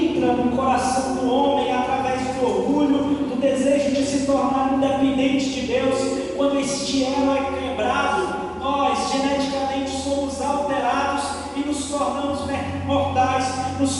no coração do homem através do orgulho, do desejo de se tornar independente de Deus, quando este elo é quebrado, nós geneticamente somos alterados e nos tornamos mortais,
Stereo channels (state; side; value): identical; both; correlation 1.00